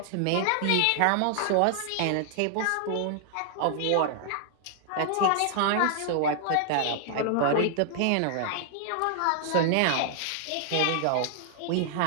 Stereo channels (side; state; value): both; different; correlation -0.01